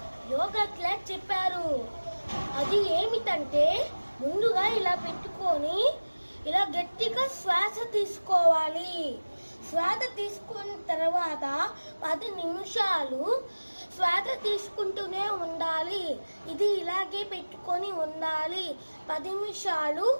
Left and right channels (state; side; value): inverted; both; correlation -1.00